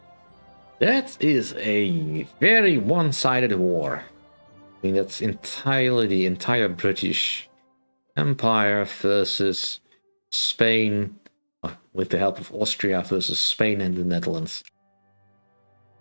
That is a very one-sided war. I mean, that's entirely the entire British Empire versus Spain, with the help of Austria versus Spain and the Netherlands.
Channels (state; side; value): inverted; both; correlation -1.00